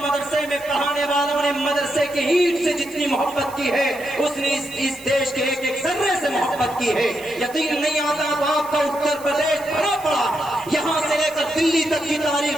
میں پڑھانے والوں نے مدرسے کے اینٹ سے جتنی محبت کی ہے، اس نے اس دیش کے ایک ایک ذرے سے محبت کی ہے۔ یقین نہیں آتا تو آپ کا اتر پردیش بھرا پڑا، یہاں سے لے کر دلی تک کی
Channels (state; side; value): noise; right; hiss, 19 dB below the sound